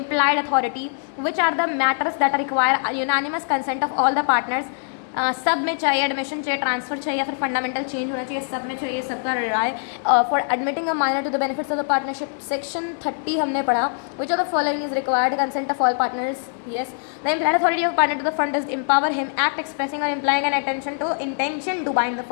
authority, which are the matters that require unanimous consent of all the partners. सब में चाहिए, admission चाहिए, transfer चाहिए या फिर fundamental change होना चाहिए, सब में चाहिए, सबका राय. For admitting a minor to the benefits of the partnership, section 30 हमने पढ़ा. Which of the following is required consent of all partners. Yes, the implied authority of partner to the firm does empower him act expressing और implying an intention to bind the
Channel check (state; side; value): silent; right; digital silence